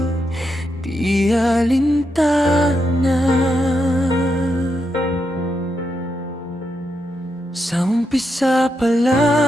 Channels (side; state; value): both; normal; correlation 0.83